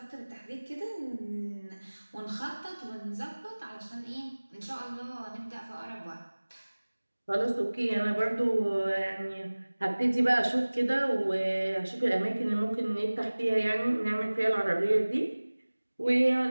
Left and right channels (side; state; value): both; inverted; correlation -1.00